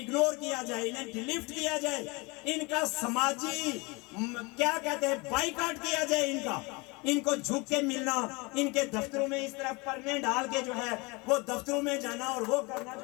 کیا جائے، انہیں ڈیلیٹ کیا جائے، ان کا سماجی کیا کہتے ہیں بائیکاٹ کیا جائے. ان کو جھک کے ملنا، ان کے دفتروں میں اس طرح پرنے ڈال کے جو ہے وہ دفتروں میں جانا اور وہ کرنا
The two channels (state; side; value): quieter; right; 26.9 dB